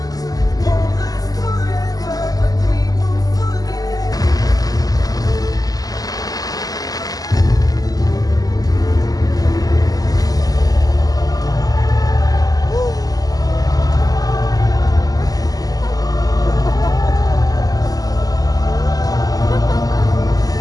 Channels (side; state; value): right; late; 0.18 ms